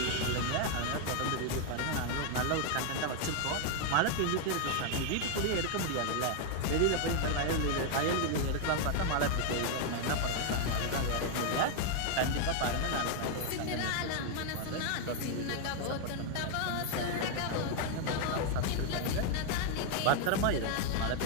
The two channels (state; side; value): different; both; correlation 0.00